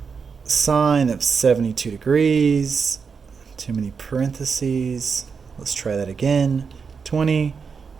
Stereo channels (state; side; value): quieter; left; 5.7 dB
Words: sine of 72 degrees. Too many parentheses. Let's try that again. 20